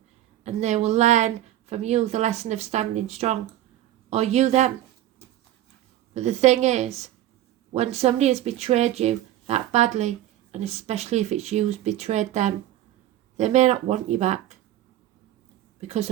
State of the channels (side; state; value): left; quieter; 13.5 dB